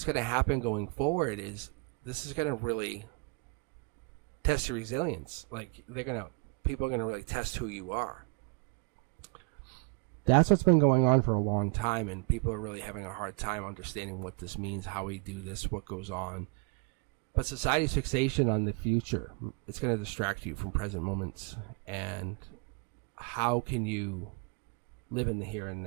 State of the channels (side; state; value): left; quieter; 32.8 dB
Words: going to happen going forward is this is going to really test your resilience. Like people are going to really test who you are. That's what's been going on for a long time, and people are really having a hard time understanding what this means, how we do this, what goes on. But society's fixation on the future, it's going to distract you from present moments. And how can you live in the here and